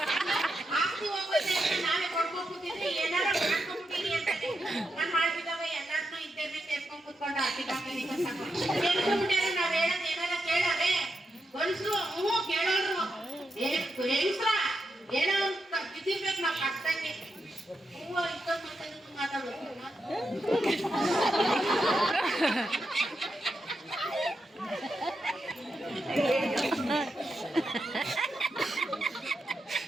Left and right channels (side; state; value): both; normal; correlation 0.86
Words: ಆಸ್ತಿ ಹೋಗೋದೇ ನಾವೇ ಕೊಡ್ಕೊಂಡ್ಬಿಟ್ಟಿದ್ರೆ ಏನಾರ ಮಾಡ್ಕೊಂಡ್ಬಿಟ್ಟಿನಿ ಅಂತಾನೆ. ನಾನ್ ಮಾಡ್ಬಿದ್ದಾವ ಎಲ್ಲಾರ್ನೂ ಇದ್ದೇನೆ ಸೇರ್ಕೊಂಡ್ ಕೂತ್ಕೊಂಡು ಆಡ್ತಿದ್ದಾಗ್ಬಿಟ್ಟಾರೆ. ನಾವ್ ಹೇಳೋದ್ ಏನಾರ ಕೇಳಾರೆ ಗಂಡ್ಸ್ರು ಹ್ಞೂ ಕೇಳೋರು. ಹೆಂಗ್ಸ್ರ ಏನೋ ಬಿದ್ದಿರ್ಬೇಕು ನಾವ್ ಕಷ್ಟಂಗೆ. ಹೂವ ಇಷ್ಟೊಂದು ಮಾತಾಡೋದು